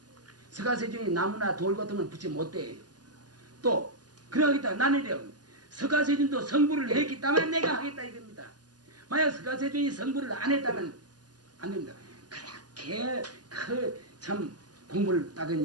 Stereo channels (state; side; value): late; left; 0.69 ms